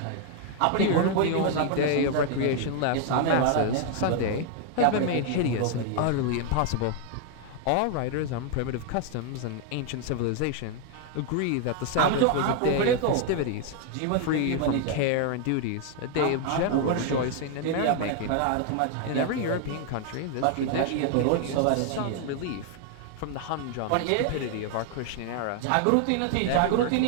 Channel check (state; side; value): different; both; correlation 0.00